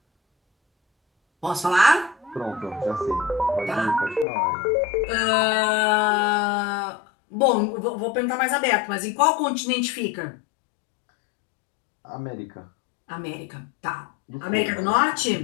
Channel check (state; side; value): drops out; right; at 4.2 s